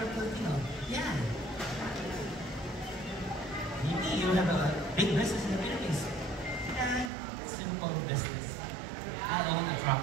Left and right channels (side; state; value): left; drops out; at 7.1 s